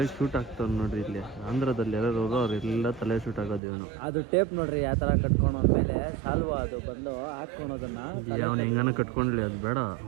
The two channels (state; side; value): drops out; left; at 3.6 s